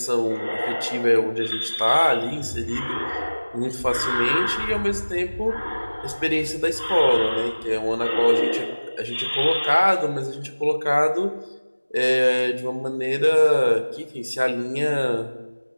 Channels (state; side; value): inverted; both; correlation -1.00